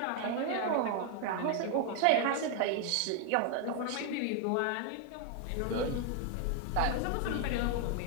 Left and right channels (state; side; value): different; both; correlation 0.00